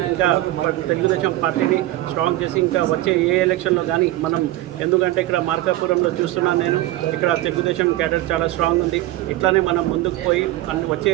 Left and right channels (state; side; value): quieter; left; 16.1 dB